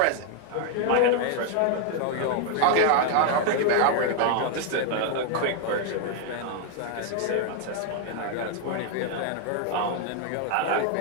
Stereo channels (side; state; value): both; different; correlation 0.00